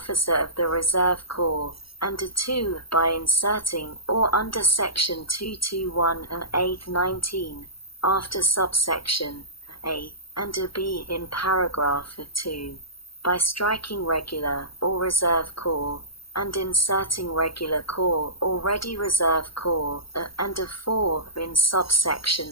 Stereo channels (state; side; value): late; right; 0.75 ms